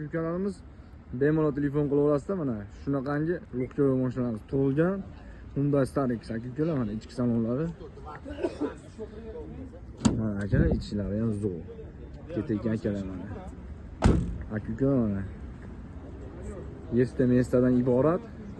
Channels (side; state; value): both; identical; correlation 1.00